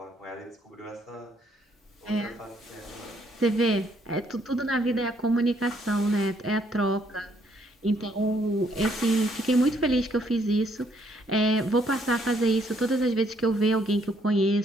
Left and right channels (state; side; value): normal; both; correlation 0.69